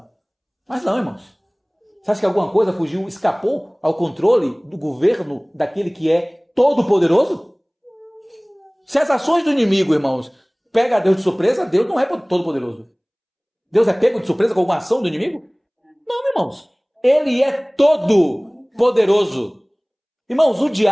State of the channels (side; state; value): both; identical; correlation 1.00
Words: Mas não, irmãos. Você acha que alguma coisa fugiu, escapou ao controle do governo daquele que é todo-poderoso? Se as ações do inimigo, irmãos, pega Deus de surpresa, Deus não é todo-poderoso. Deus é pego de surpresa com alguma ação do inimigo? Não, irmãos. Ele é todo-poderoso. Irmãos, o